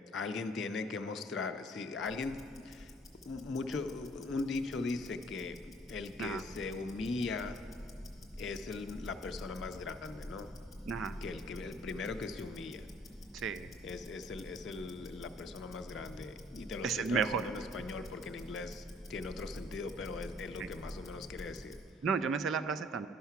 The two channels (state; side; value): normal; both; correlation 0.59